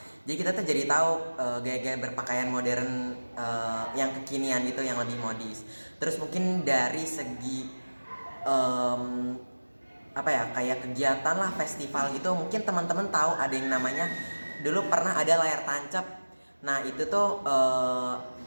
Jadi kita tuh jadi tahu gaya-gaya berpakaian modern yang kekinian gitu, yang lebih modis. Terus mungkin dari segi kayak kegiatan lah, festival gitu, mungkin teman-teman tahu ada yang namanya, dulu pernah ada layar tancap. Nah itu tuh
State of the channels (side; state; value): both; inverted; correlation -1.00